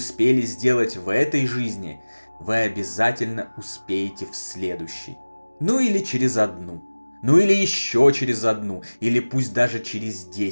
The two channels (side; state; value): both; inverted; correlation -1.00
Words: сделать в этой жизни, вы обязательно успеете в следующей. Ну или через одну. Ну или еще через одну. Или пусть даже через